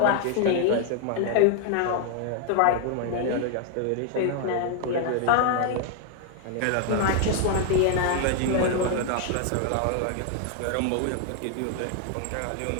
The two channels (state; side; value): different; both; correlation 0.00